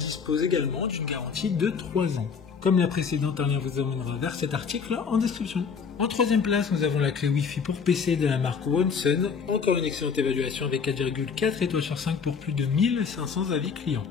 également d'une garantie de 3 ans. Comme la précédente, un lien vous emmènera vers cet article en description. En 3e place, nous avons la clé Wi-Fi pour PC de la marque OneSun, encore une excellente évaluation avec 4,4 étoiles sur 5 pour plus de 1500 avis clients.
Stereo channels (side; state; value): right; quieter; 6.0 dB